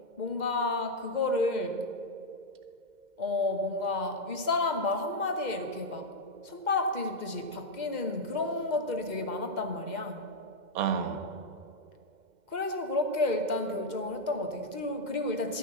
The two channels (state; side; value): late; left; 2.1 ms